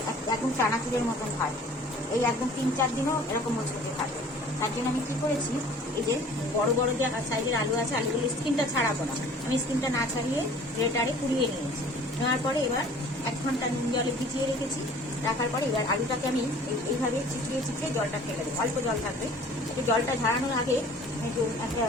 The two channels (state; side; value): normal; both; correlation 0.49